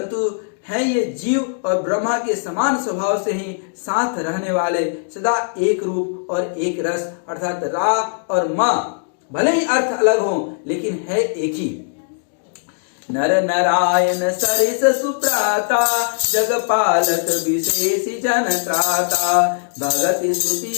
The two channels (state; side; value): silent; right; digital silence